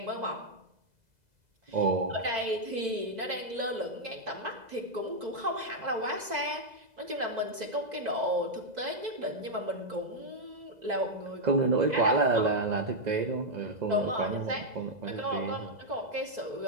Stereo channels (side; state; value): left; late; 2.0 ms